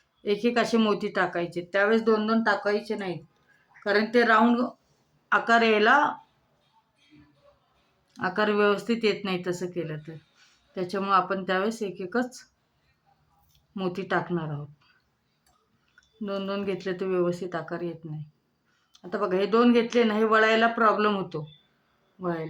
एक एक असे मोती टाकायचे. त्यावेळेस दोन दोन टाकायचे नाहीत, कारण ते राऊंड आकार यायला आकार व्यवस्थित येत नाही तसं केलं तर. त्याच्यामुळे आपण त्यावेळेस एक एकच मोती टाकणार आहोत. दोन दोन घेतले तर व्यवस्थित आकार येत नाही. आता बघा हे दोन घेतले ना, हे वळायला प्रॉब्लेम होतो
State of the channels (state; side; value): identical; both; correlation 1.00